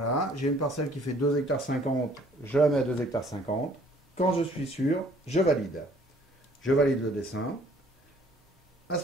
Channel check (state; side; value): normal; both; correlation 0.58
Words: j'ai une parcelle qui fait 2,50 hectares, je la mets à 2,50 hectares. Quand je suis sûr, je valide. Je valide le dessin. À